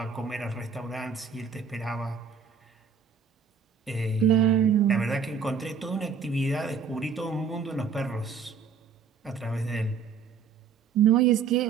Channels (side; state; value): left; quieter; 6.1 dB